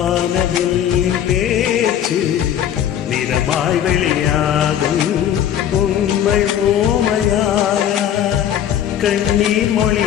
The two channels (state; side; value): quieter; right; 10.2 dB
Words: பேச்சு நிறமாய் வெளியாகும். உண்மை ஓமையாக கண்ணீர்